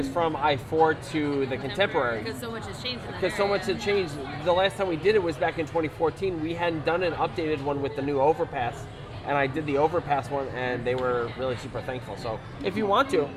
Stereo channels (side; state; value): both; identical; correlation 1.00